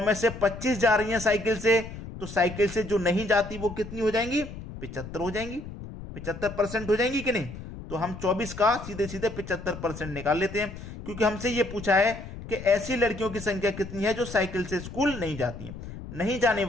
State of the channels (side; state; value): left; noise; rumble, 11 dB below the sound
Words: से 25 जा रही हैं साइकिल से, तो साइकिल से जो नहीं जाती वो कितनी हो जाएंगी? 75 हो जाएंगी। 75% हो जाएंगी कि नहीं? तो हम 24 का सीधे सीधे 75% निकाल लेते हैं, क्योंकि हमसे ये पूछा है कि ऐसी लड़कियों की संख्या कितनी है जो साइकिल से स्कूल नहीं जाती हैं। नहीं जाने